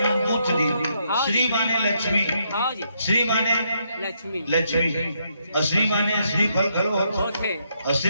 दी। हाँ। श्री माने लक्ष्मी, हाँ जी श्री माने लक्ष्मी लक्ष्मी, और श्री माने श्री फल खलो होते, होते और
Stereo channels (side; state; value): both; inverted; correlation -0.76